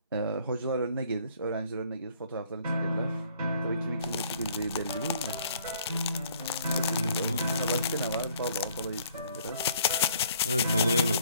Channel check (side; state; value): both; inverted; correlation -0.60